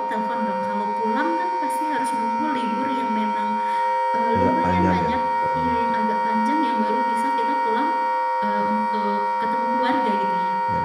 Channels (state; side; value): identical; both; correlation 1.00